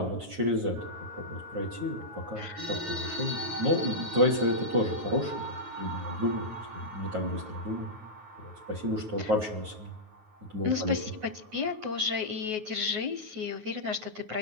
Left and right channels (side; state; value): left; late; 9.4 ms